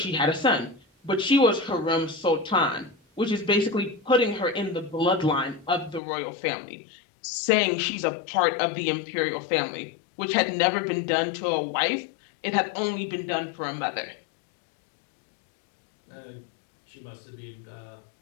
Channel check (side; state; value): right; drops out; at 6.0 s